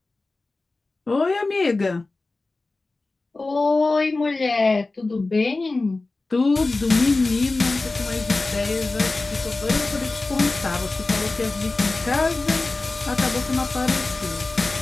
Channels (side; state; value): right; quieter; 3.3 dB